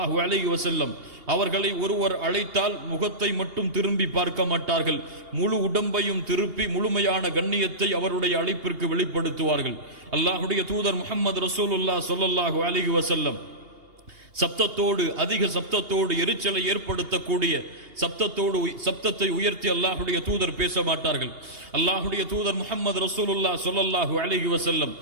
அலைஹி வஸல்லம் அவர்களை ஒருவர் அழைத்தால் முகத்தை மட்டும் திரும்பி பார்க்க மாட்டார்கள், முழு உடம்பையும் திருப்பி முழுமையான கண்ணியத்தை அவருடைய அழைப்பிற்கு வெளிப்படுத்துவார்கள். அல்லாஹுடைய தூதர் முஹம்மது ரசூலுல்லாஹ் ஸல்லல்லாஹு அலைஹி வஸல்லம் சப்தத்தோடு, அதிக சப்தத்தோடு, எரிச்சலை ஏற்படுத்தக்கூடிய சப்தத்தை உயர்த்தி அல்லாஹுடைய தூதர் பேச மாட்டார்கள். அல்லாஹுடைய தூதர் முஹம்மது ரசூலுல்லாஹ் ஸல்லல்லாஹு அலைஹி வஸல்லம்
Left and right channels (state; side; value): late; left; 2.8 ms